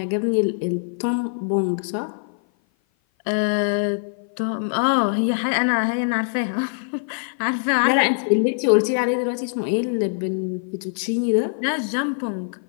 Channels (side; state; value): right; silent; 56 dB below the other